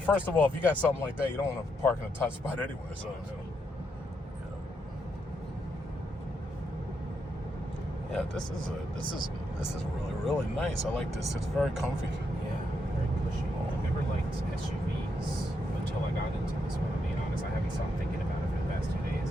of all, if you got something like that, you don't want to park in a tight spot anyway. So. Yeah, this is really, really nice. I like this. It's very comfy. Yeah, very cushy. I never liked SUVs until I got into this one. To be honest, I haven't stopped thinking about it for the past 2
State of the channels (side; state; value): both; normal; correlation 0.80